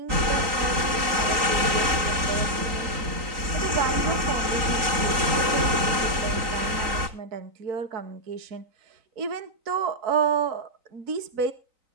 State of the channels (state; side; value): late; left; 3.8 ms